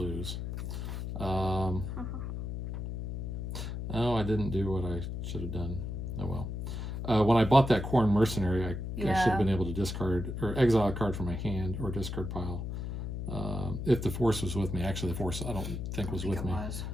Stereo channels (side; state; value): left; noise; hum, 5 dB below the sound